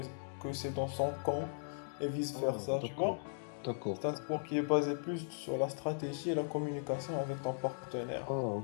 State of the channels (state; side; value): silent; right; digital silence